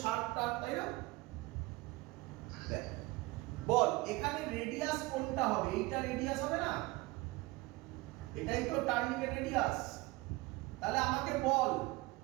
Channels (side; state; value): left; quieter; 21.9 dB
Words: শার্প টার্ন, তাই না? দেখ, বল এখানে রেডিয়াস কোনটা হবে? এইটা রেডিয়াস হবে না? এটাই তো টার্নিং এর রেডিয়াস। তাহলে আমাকে বল